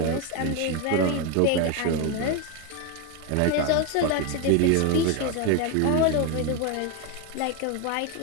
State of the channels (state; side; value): different; both; correlation 0.02